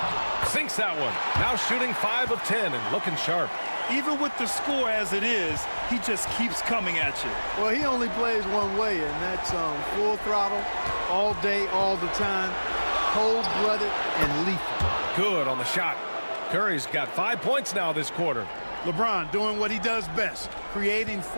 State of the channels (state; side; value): inverted; both; correlation -1.00